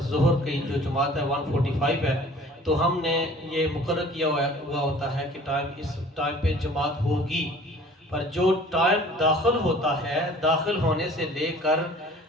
ظہر کی جو جماعت ہے 145 ہے، تو ہم نے یہ مقرر کیا ہوا ہوتا ہے کہ اس ٹائم پہ جماعت ہوگی. پر جو ٹائم داخل ہوتا ہے، داخل ہونے سے لے کر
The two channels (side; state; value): both; normal; correlation 0.49